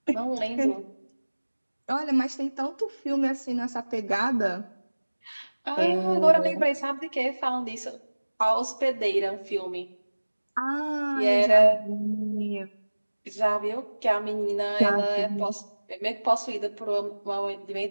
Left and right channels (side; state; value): both; inverted; correlation -1.00